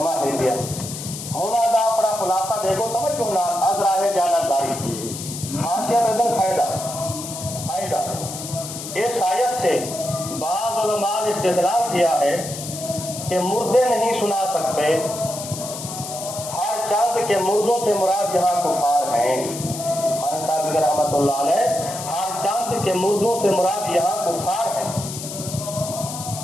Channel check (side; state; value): left; noise; hiss, 9 dB below the sound